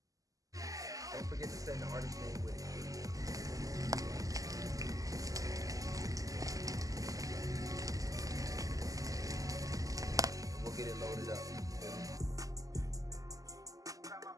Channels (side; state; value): left; late; 0.17 ms